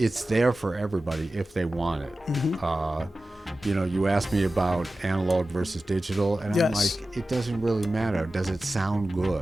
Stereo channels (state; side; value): normal; both; correlation 0.95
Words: there for everybody if they want it. Mm-hmm. You asked me about analog versus digital, and yes. I'm like, it doesn't really matter. Does it sound